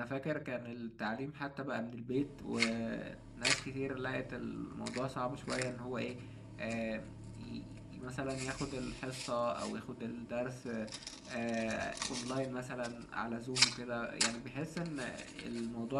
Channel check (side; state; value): both; identical; correlation 1.00